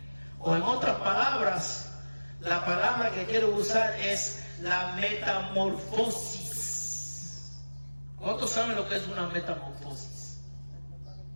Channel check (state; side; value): inverted; both; correlation -1.00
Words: O en otras palabras, la palabra que quiero usar es la metamorfosis. ¿Cuántos saben lo que es una metamorfosis?